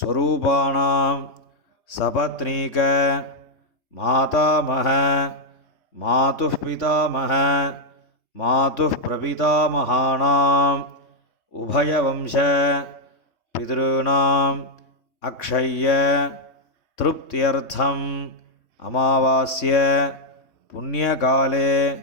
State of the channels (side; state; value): right; late; 3.2 ms